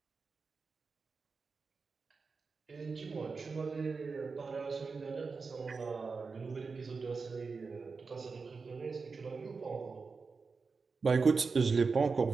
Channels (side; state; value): left; quieter; 4.6 dB